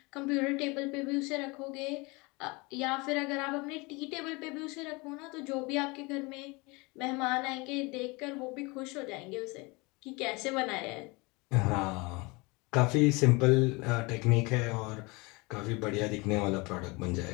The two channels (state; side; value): quieter; right; 26.2 dB